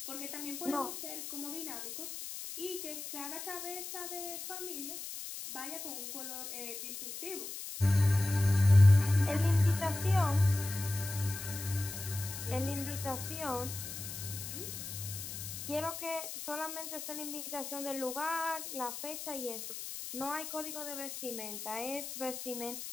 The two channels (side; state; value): left; noise; hiss, 8 dB below the sound